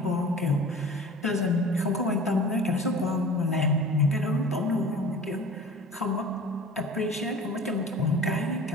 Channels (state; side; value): normal; both; correlation 0.41